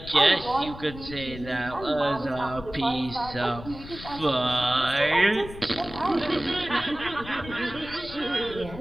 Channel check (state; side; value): noise; left; rumble, 14 dB below the sound